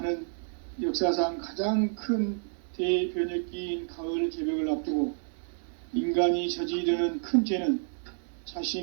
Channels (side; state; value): left; silent; digital silence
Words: 역사상 가장 큰 대변혁기인 가을 개벽을 앞두고 인간이 저지르는 큰 죄는